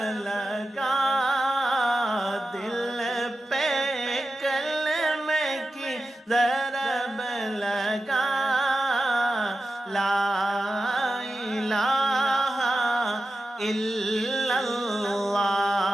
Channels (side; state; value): both; normal; correlation 0.92